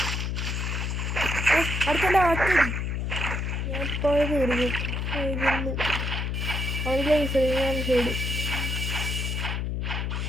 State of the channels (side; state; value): left; noise; hum, 1 dB below the sound